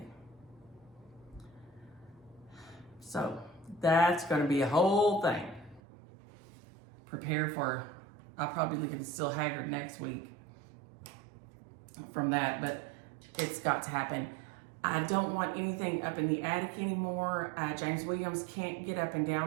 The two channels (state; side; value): drops out; left; at 5.8 s